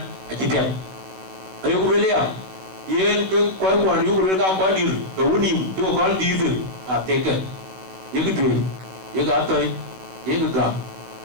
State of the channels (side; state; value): left; late; 16 ms